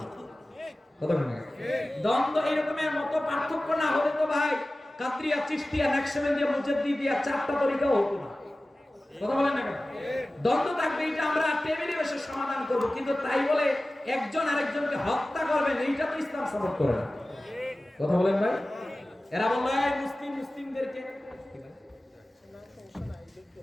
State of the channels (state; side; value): normal; both; correlation 0.96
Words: না। কথা বলেন না? দ্বন্দ্ব এরকমের মত পার্থক্য না হলে তো ভাই কাদরিয়া, চিশতিয়া, নাকশবন্দিয়া, মুজাদ্দিদিয়া 4টা তরিকাও হতো না। কথা বলেন না কেন? দ্বন্দ্ব থাকবে, এটা আমরা টেবিলে বসে সমাধান করব, কিন্তু তাই বলে একজন আরেকজনকে হত্যা করবেন, এইটা তো ইসলাম সাপোর্ট করে না। কথা বলেন ভাই? এরা বলল এই মুসলিমদেরকে